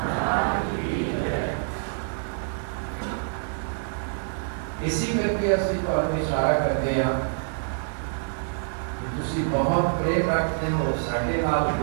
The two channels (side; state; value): left; silent; digital silence